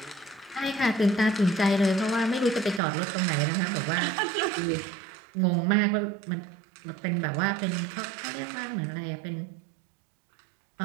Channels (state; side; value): drops out; left; at 2.8 s